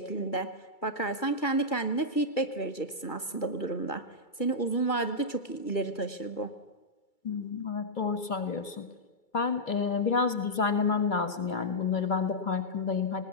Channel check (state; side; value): late; right; 2.3 ms